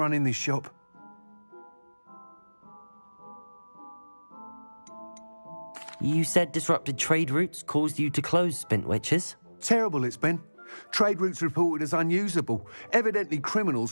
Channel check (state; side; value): inverted; both; correlation -1.00